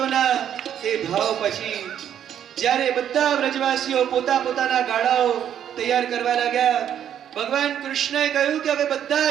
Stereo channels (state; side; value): quieter; left; 9.7 dB